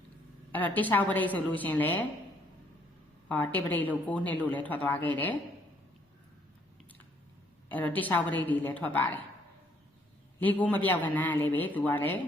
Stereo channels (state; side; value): normal; both; correlation 0.66